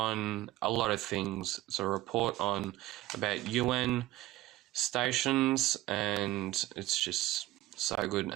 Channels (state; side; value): quieter; left; 16.4 dB